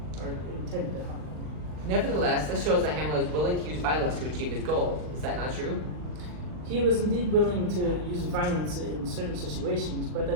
or intended to harm him. Nevertheless, this shows that Hamlet was willing to use violence to achieve his goals. Is that not true? He was indeed willing to use violence in certain situations, but I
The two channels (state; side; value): late; left; 39 ms